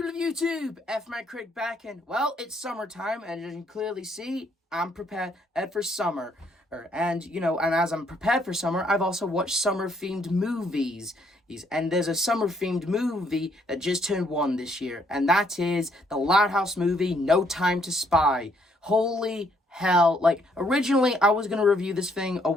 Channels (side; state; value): both; normal; correlation 0.69